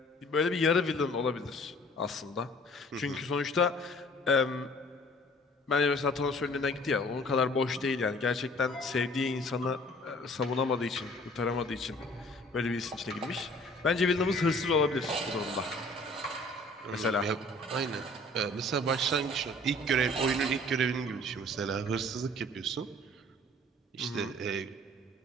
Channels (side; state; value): both; normal; correlation 0.52